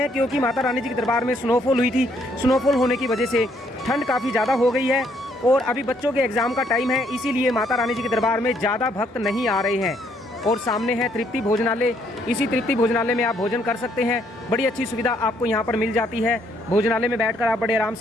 क्योंकि माता रानी जी के दरबार में स्नोफॉल हुई थी। स्नोफॉल होने की वजह से ठंड काफ़ी ज़्यादा हो गई है और अभी बच्चों के एग्ज़ाम का टाइम है, इसीलिए माता रानी जी के दरबार में ज़्यादा भक्त नहीं आ रहे हैं। और सामने है तृप्ति भोजनालय। इसी तृप्ति भोजनालय में आप भोजन कर सकते हैं। बड़ी अच्छी सुविधा आपको यहाँ पर मिल जाती है। भोजनालय में बैठकर आप बड़े आराम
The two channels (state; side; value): normal; both; correlation 0.69